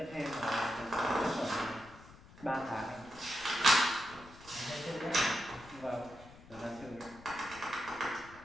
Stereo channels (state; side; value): noise; left; rumble, 20 dB below the sound